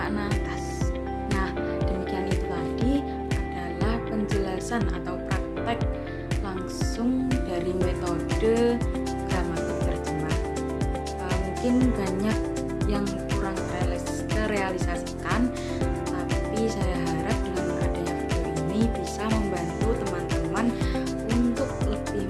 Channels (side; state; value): both; identical; correlation 1.00